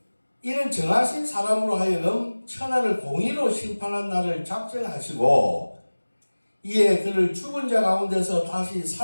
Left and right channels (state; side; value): inverted; both; correlation -1.00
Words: 이는 정하신 사람으로 하여금 천하를 공의로 심판한 날을 작정하시고 이에 그를 죽은 자 가운데서 다시